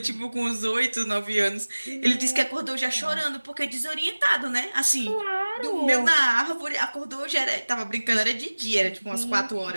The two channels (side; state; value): both; inverted; correlation -1.00